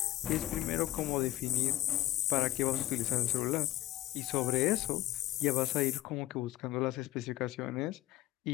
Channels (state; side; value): quieter; right; 15.0 dB